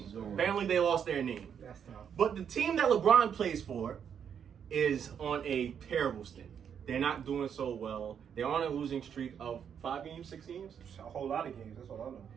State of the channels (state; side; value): quieter; left; 8.0 dB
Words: So- Apparently, they lost their name. That's tough. But the team that LeBron plays for is on a terrible stint. They're not doing so well. They're on a losing streak of 5 games, 6 games. A whole lot of games. That's all I know.